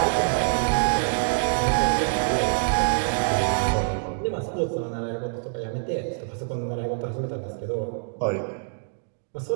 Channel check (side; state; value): left; silent; digital silence